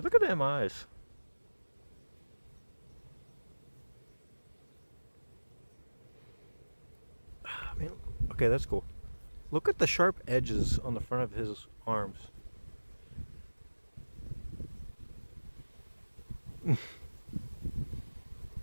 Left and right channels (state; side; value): inverted; both; correlation -1.00